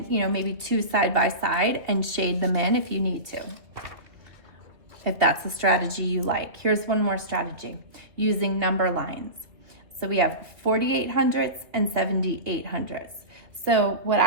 maybe 2 side by side and shade them in if you need to, if that's a strategy you like. Here's one more strategy, using number lines. So we have 48 hundredths and 78 hundredths. So what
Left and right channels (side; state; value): left; late; 2.4 ms